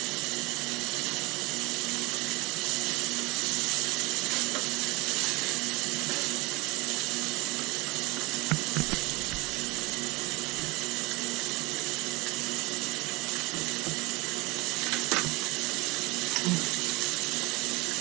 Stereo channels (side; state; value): left; quieter; 24.5 dB